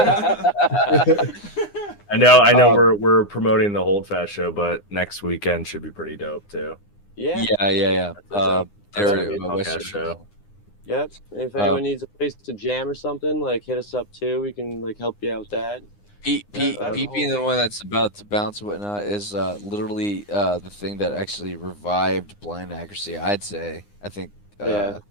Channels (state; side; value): late; right; 9.8 ms